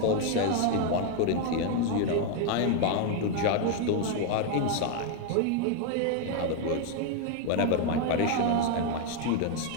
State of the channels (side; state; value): both; different; correlation 0.00